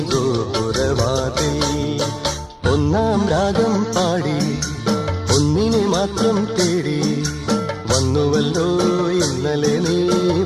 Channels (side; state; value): both; identical; correlation 1.00